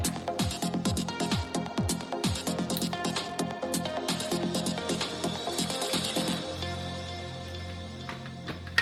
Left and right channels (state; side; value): identical; both; correlation 1.00